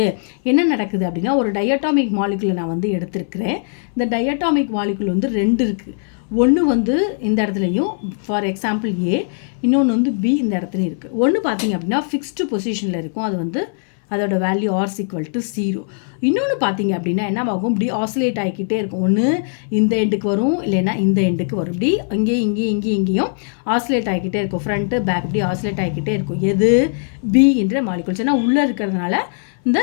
என்ன நடக்குது அப்படின்னா ஒரு டயட்டாமிக் மாலிகுலை நான் வந்து எடுத்திருக்கிறேன். இந்த டயட்டாமிக் மாலிகுல் வந்து 2 இருக்குது. ஒன்று வந்து இந்த இடத்துலையும் ஃபார் எக்ஸாம்பிள் A, இன்னொன்று வந்து B இந்த இடத்துலையும் இருக்குது. ஒன்று பார்த்தீங்க அப்படின்னா ஃபிக்ஸ்டு பொசிஷனில் இருக்கும், அது வந்து அதோட வேல்யூ R = 0. இன்னொன்று பார்த்தீங்க அப்படின்னா என்ன ஆகும், இப்படி ஆசிலேட் ஆகிக்கிட்டே இருக்கும். ஒன்று இந்த எண்டுக்கு வரும், இல்லைன்னா இந்த எண்டுக்கு வரும். இப்படி இங்கேயும் ஆசிலேட் ஆகிக்கிட்டே இருக்கும். ஃப்ரண்ட்டு பேக் இப்படி ஆசிலேட் ஆகிக்கிட்டே இருக்கும். எது B என்ற மாலிகுல்ஸ். ஏன்னா உள்ளே இருக்கிறதுனால இந்த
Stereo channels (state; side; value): silent; right; 61 dB below the other